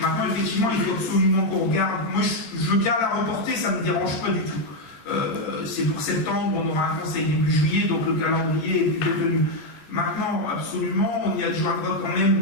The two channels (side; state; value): right; late; 13 ms